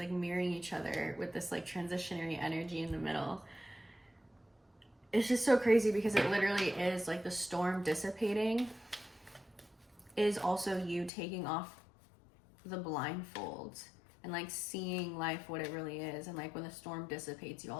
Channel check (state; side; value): drops out; right; at 11.1 s